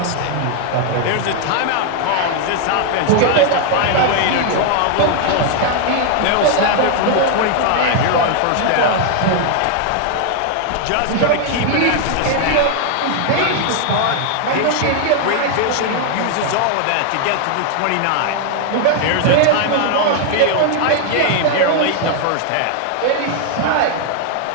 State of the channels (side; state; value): both; different; correlation 0.00